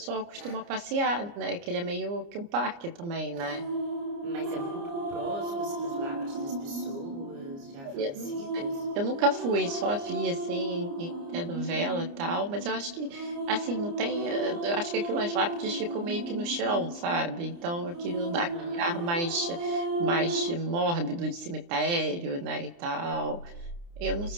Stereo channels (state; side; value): late; left; 29 ms